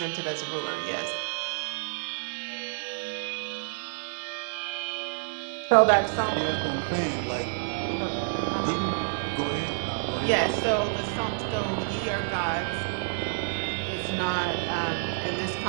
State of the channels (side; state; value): left; silent; 59 dB below the other